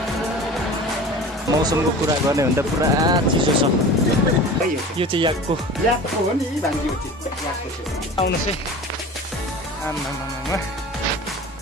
मौसमको कुरा गर्ने भन्दा पुरा चिसो छ। यो चाहिँ याकको हो नि भान्जी हो याकको चाहिँ आउनुहोस् है। आम्मामामा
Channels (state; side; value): normal; both; correlation 0.37